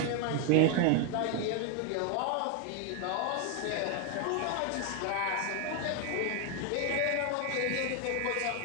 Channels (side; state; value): both; different; correlation 0.00